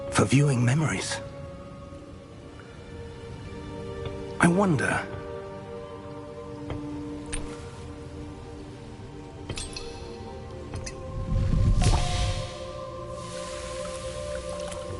for viewing memories. I wonder...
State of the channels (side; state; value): both; identical; correlation 1.00